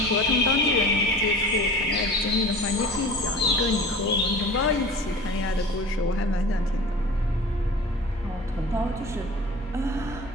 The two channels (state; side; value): normal; both; correlation 0.39